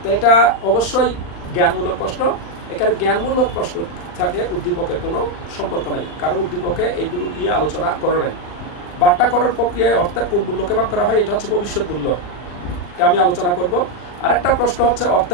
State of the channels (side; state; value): right; late; 39 ms